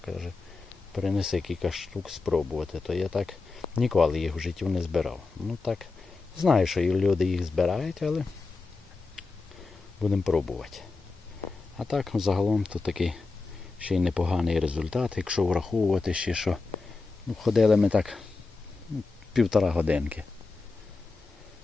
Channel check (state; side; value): quieter; right; 4.0 dB